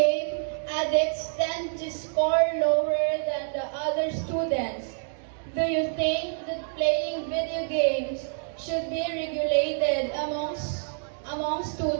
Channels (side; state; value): left; silent; digital silence